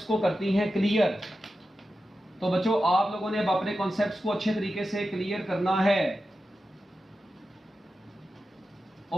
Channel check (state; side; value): normal; both; correlation 0.92